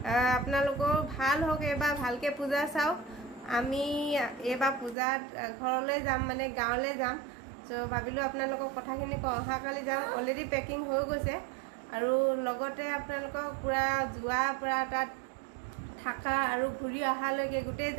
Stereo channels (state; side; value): drops out; left; at 5.0 s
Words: আপোনালোকৰ ভাল হওক, এইবাৰ ভালকৈ পূজা চাওক। আমি এইবাৰ পূজাত ঘৰলৈ যাম, মানে গাঁৱলৈ যাম। চ' ভাবিলোঁ আপোনালোকক কথাখিনি কওঁ। অহাকালি যাম, অলৰেডি পেকিং হৈ গৈছে। আৰু লগতে আপোনালোকক পূৰা যোৱাৰ পৰা তাত থাকা আৰু ঘূৰি অহালৈকে গোটেই